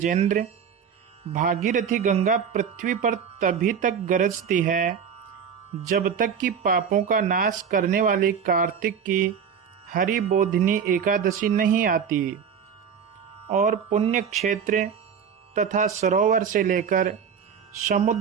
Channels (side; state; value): left; quieter; 7.2 dB